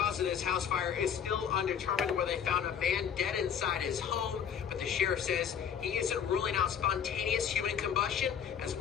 of this house fire is still undetermined, where they found a man dead inside his home, but the sheriff says he isn't ruling out spontaneous human combustion as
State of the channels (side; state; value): right; quieter; 8.0 dB